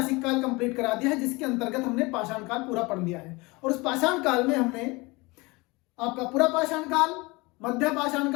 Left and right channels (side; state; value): right; quieter; 24.5 dB